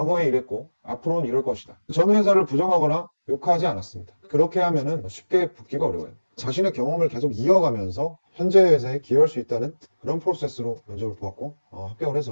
이랬고 앞으로는 이럴 것이다. 전 회사를 부정하거나 욕하지 않았습니다. 그렇게 하면은 쉽게 붙기가 어려워요. 자신의 경험을 계속 이어가면서 현재 회사에 기여할 수 있다는 그런 프로세스로 면접을 보았고 합격을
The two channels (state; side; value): inverted; both; correlation -1.00